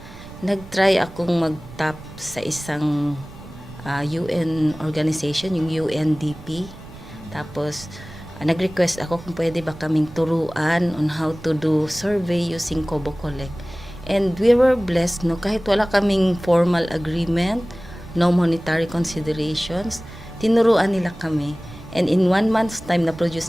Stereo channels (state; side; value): noise; right; rumble, 17 dB below the sound